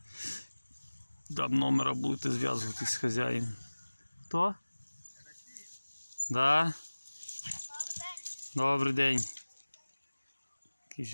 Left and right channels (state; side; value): inverted; both; correlation -1.00